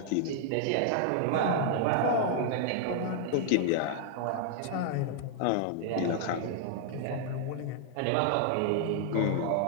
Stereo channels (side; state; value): both; different; correlation -0.01